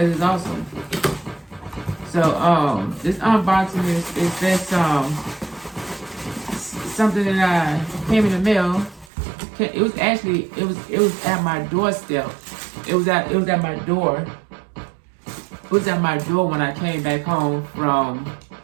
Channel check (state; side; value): drops out; left; at 9.1 s